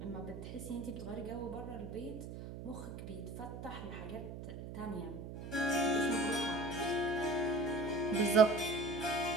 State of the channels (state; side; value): noise; right; hum, 9 dB below the sound